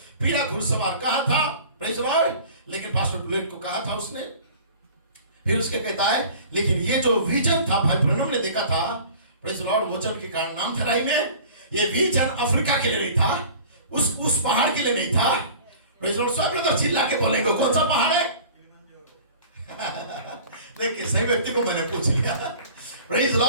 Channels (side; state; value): both; inverted; correlation -0.44